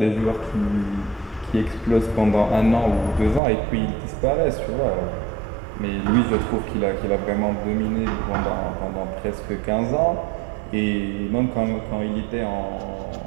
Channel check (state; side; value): drops out; left; at 3.4 s